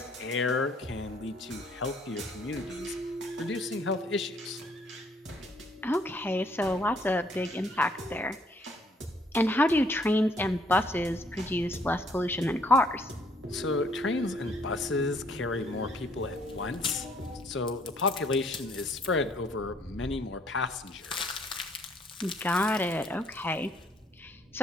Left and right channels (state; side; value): normal; both; correlation 0.65